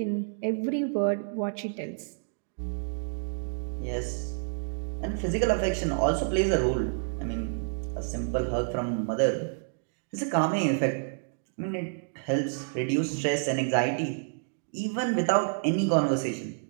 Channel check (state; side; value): silent; left; digital silence